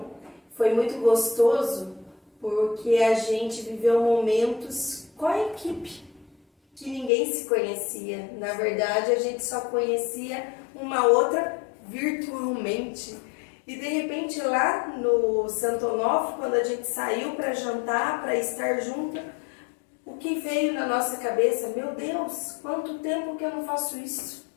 foi muito gostoso, porque a gente viveu momentos com a equipe que ninguém se conhecia. Na verdade, a gente só conhecia uma outra virtualmente. E de repente lá no Santo Onofre, quando a gente saiu para jantar, para estar junto, o que veio na nossa cabeça? Meu Deus, quanto tempo que eu não faço isso?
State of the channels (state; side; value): drops out; right; at 7.1 s